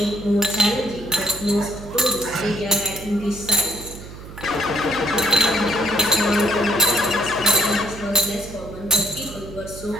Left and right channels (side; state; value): right; noise; hum, 14 dB below the sound